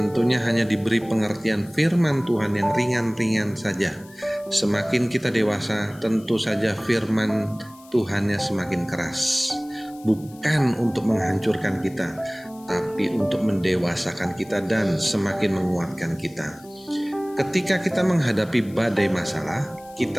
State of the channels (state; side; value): noise; left; hiss, 25 dB below the sound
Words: hanya diberi pengertian firman Tuhan yang ringan-ringan saja. Semakin kita dewasa, tentu saja firman Tuhannya semakin keras. Bukan untuk menghancurkan kita, tapi untuk mendewasakan kita dan semakin menguatkan kita. Ketika kita menghadapi badai masalah,